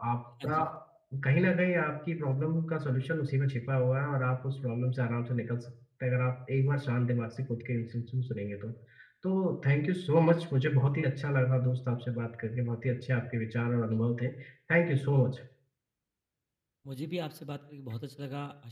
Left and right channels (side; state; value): both; identical; correlation 1.00